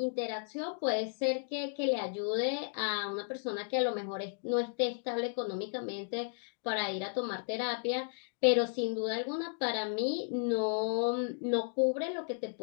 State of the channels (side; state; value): right; silent; digital silence